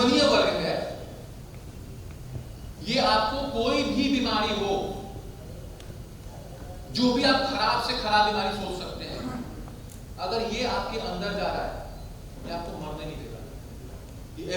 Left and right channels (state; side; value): identical; both; correlation 1.00